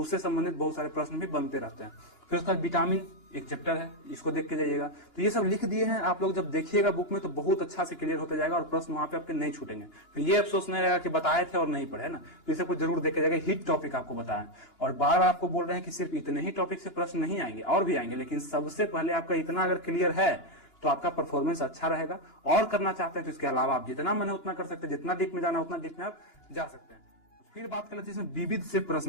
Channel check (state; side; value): late; right; 2.9 ms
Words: उससे संबंधित बहुत सारे प्रश्न भी बनते रहते हैं। फिर उसका विटामिन एक चैप्टर है, इसको देख के जाइएगा। तो ये सब लिख दिए हैं, आप लोग जब देखिएगा बुक में तो बहुत अच्छा से क्लियर होता जाएगा और प्रश्न वहां पे आपके नहीं छूटेंगे। फिर ये अफसोस नहीं रहेगा कि बताए थे और नहीं पढ़े ना, तो इसे कुछ जरूर देख के जाएगा। हिट टॉपिक आपको बताएं, और बार बार आपको बोल रहे हैं कि सिर्फ इतने ही टॉपिक से प्रश्न नहीं आएंगे, और भी आएंगे, लेकिन सबसे पहले आपका इतना अगर क्लियर है तो आपका परफॉर्मेंस अच्छा रहेगा। और करना चाहते हैं तो इसके अलावा आप जितना मन है उतना कर सकते हैं, जितना डीप में जाना उतना डीप में आप जा सकते हैं। फिर बात कर लेते हैं इसमें विविध से